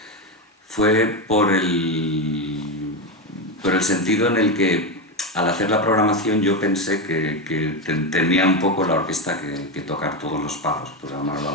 fue por el sentido en el que al hacer la programación yo pensé que tenía un poco la orquesta que tocar todos los palos, por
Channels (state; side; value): normal; both; correlation 0.13